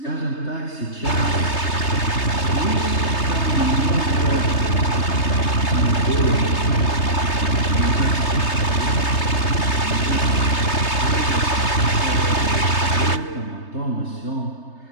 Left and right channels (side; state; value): right; late; 3.3 ms